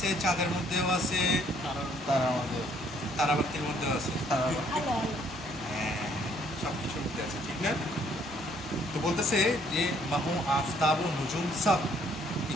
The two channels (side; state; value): both; normal; correlation 0.65